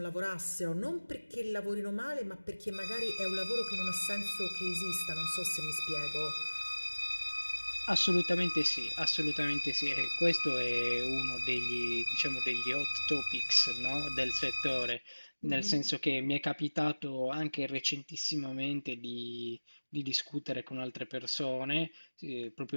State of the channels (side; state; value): both; inverted; correlation -1.00